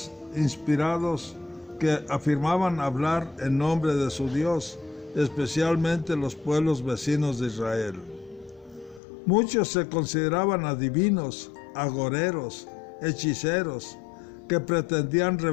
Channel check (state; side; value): drops out; right; at 9.0 s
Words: inspirados que afirmaban hablar en nombre de su Dios, especialmente los pueblos vecinos de Israel. Muchos se consideraban adivinos, agoreros, hechiceros, que pretendían